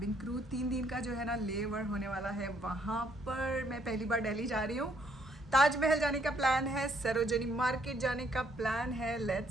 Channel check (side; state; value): both; normal; correlation 0.69